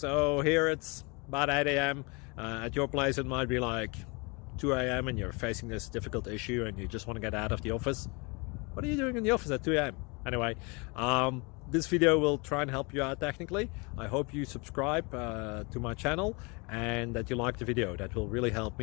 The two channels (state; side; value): quieter; right; 29.6 dB